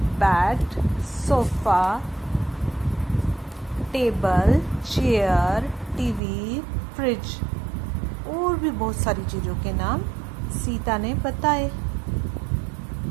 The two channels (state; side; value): drops out; left; at 6.2 s